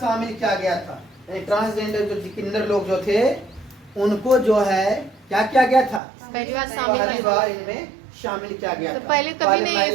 शामिल किया गया था। ट्रांसजेंडर जो किन्नर लोग जो थे उनको जो है क्या किया गया था, पहली बार पहली बार इनमें शामिल किया गया तो था। पहले कभी नहीं महिला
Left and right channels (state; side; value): drops out; left; at 6.0 s